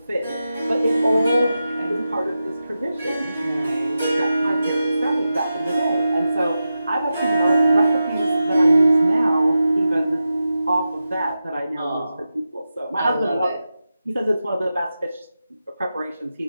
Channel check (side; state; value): both; inverted; correlation -0.91